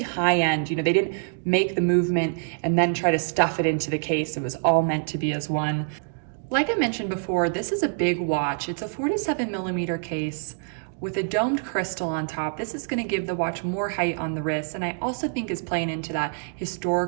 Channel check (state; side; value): silent; left; digital silence